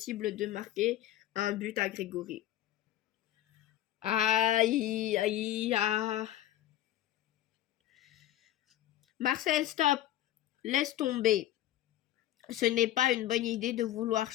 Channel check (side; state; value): right; quieter; 13.4 dB